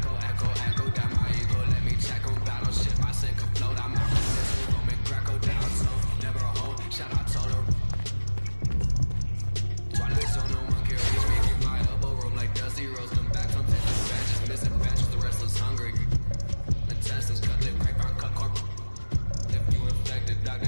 down my ego, let me check on battle shit, my sink afloat, I'm out of this, Roman Greco down slow, never a hold, shout out to her. Twilight zone, no one can reach me, through my elbow room like Dusty Rose, come back from taking batches, missing batches, the restless hungry. Intestines cut lip, grapevine, cut corp. If you infected,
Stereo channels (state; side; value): inverted; both; correlation -1.00